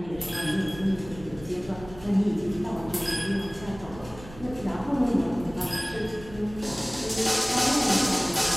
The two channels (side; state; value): right; noise; rumble, 17 dB below the sound